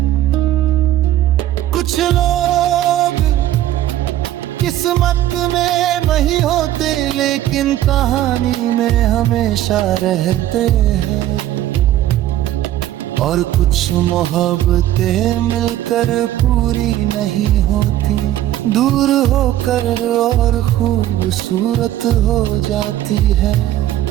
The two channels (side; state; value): left; quieter; 13.3 dB